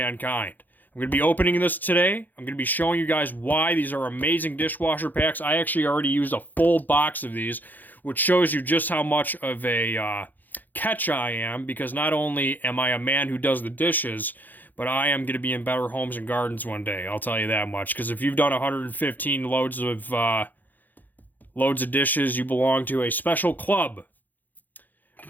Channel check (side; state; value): right; late; 0.085 ms